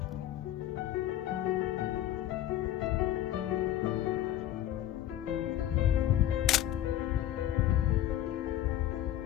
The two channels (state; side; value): quieter; right; 12.6 dB